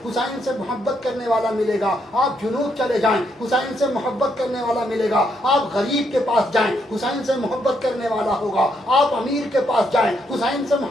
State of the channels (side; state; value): both; normal; correlation 0.76